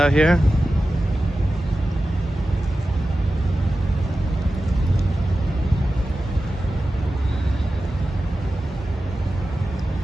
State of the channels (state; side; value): normal; both; correlation 0.94